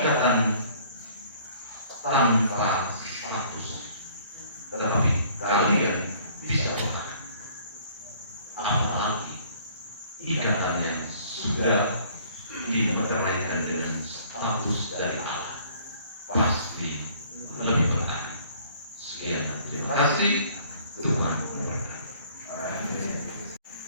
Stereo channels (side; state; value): both; inverted; correlation -0.56